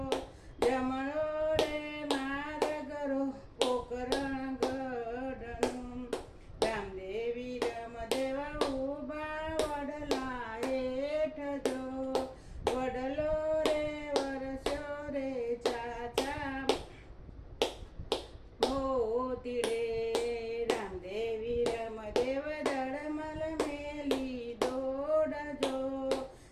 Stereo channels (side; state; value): both; identical; correlation 1.00